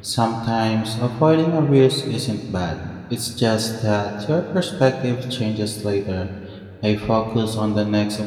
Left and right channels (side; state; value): both; identical; correlation 1.00